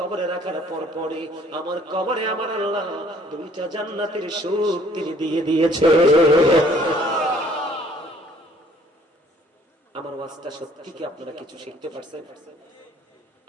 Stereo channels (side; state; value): both; normal; correlation 0.59